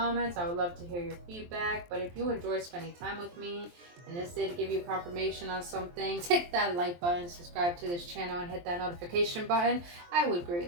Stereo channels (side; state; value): left; late; 23 ms